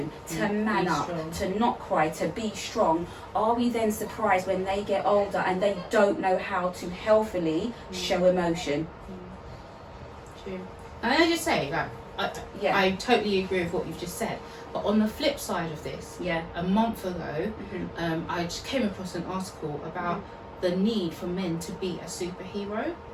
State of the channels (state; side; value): identical; both; correlation 1.00